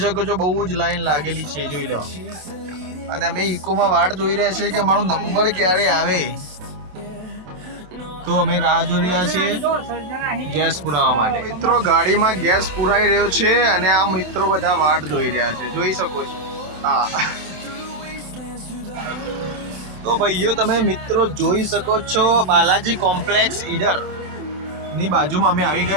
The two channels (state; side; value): late; left; 27 ms